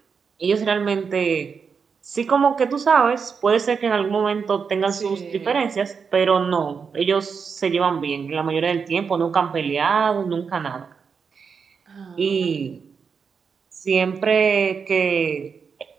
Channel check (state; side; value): quieter; left; 5.9 dB